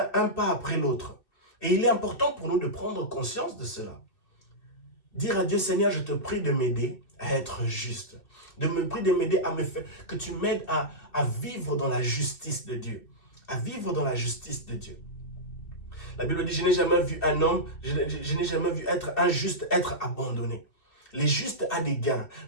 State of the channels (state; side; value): late; right; 2.6 ms